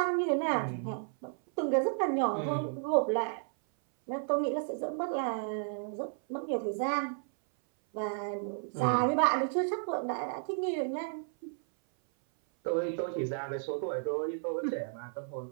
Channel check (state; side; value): silent; left; 56 dB below the other